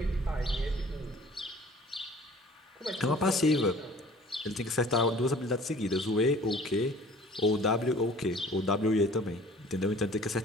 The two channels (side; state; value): both; normal; correlation 0.49